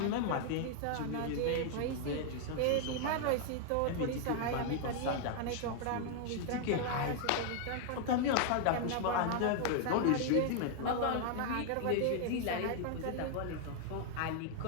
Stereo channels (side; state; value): both; different; correlation 0.00